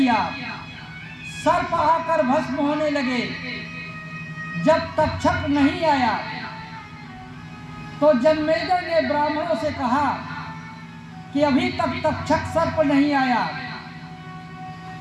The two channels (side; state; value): both; identical; correlation 1.00